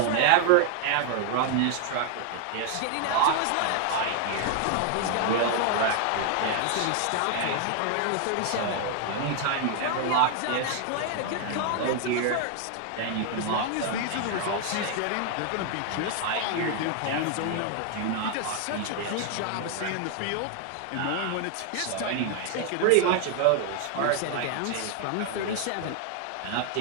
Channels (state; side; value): different; both; correlation 0.00